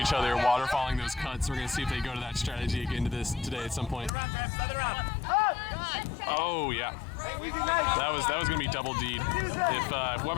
other, waterfalling those cuts. We're gonna see if they go to that strategy again today at some point. Oh yeah, that was gonna be double D'd. If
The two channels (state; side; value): drops out; right; at 4.1 s